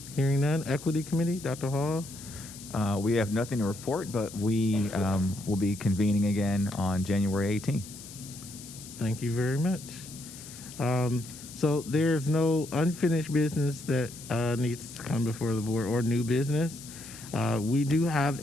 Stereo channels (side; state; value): left; noise; hiss, 15 dB below the sound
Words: Hearing none. Equity Committee, Dr. Hall? We have nothing to report, but we will be convening again on January 18th. Thank you very much. So there's no unfinished business that needs to come before the board or new business. We do have